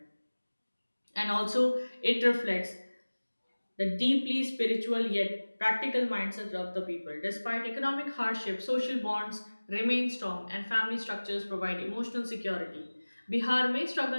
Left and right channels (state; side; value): inverted; both; correlation -1.00